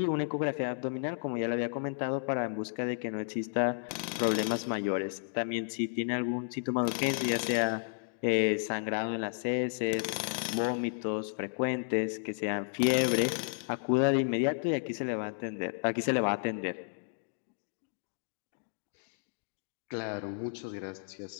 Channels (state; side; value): silent; right; digital silence